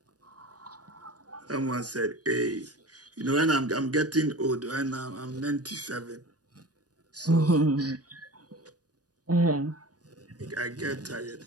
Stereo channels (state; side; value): late; left; 0.68 ms